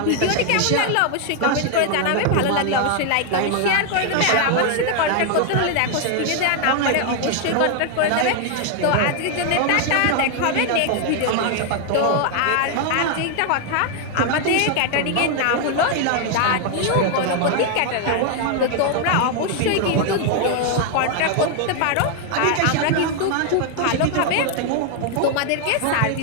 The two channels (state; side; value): different; both; correlation 0.00